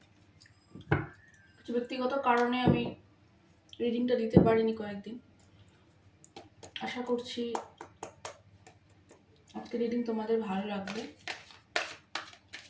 কিছু ব্যক্তিগত কারণে আমি রিডিংটা দিতে পারিনি কয়েকদিন। আশা করছি আজকে রিডিং তোমাদের ভালো লাগবে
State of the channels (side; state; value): both; identical; correlation 1.00